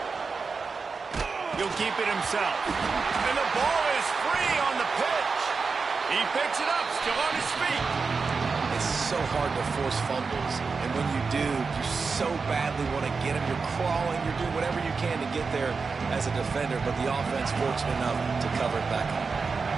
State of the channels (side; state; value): left; quieter; 4.8 dB